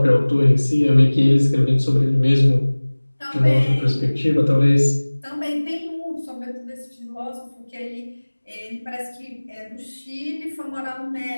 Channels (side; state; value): both; inverted; correlation -1.00